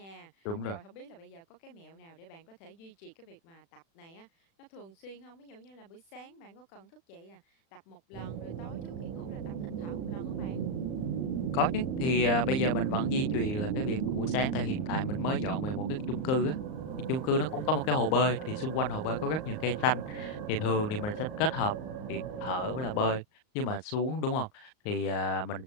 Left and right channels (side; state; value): right; late; 38 ms